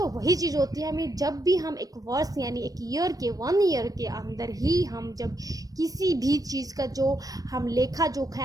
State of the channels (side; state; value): left; late; 0.18 ms